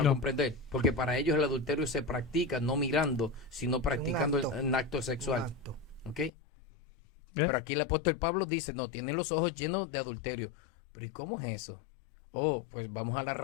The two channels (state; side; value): drops out; right; at 6.3 s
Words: No. comprender, porque para ellos el adulterio se practica no mirando, sino practicando acto. un acto sexual. Exacto. ¿Ok? ¿Eh? Pero aquí el apóstol Pablo dice, no, tienen los ojos llenos de adulterio. Pero ¿y cómo es eso? Oh, pues vamos a la